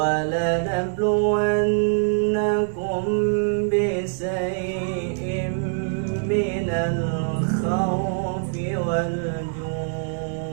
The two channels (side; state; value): left; silent; digital silence